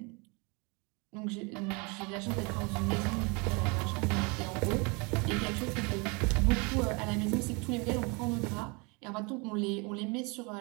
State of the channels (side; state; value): left; quieter; 29.9 dB